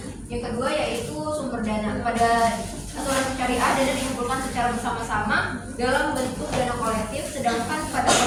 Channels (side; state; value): both; identical; correlation 1.00